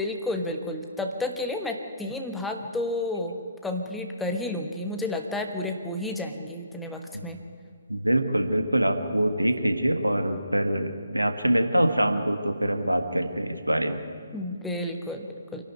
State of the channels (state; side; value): inverted; both; correlation -0.72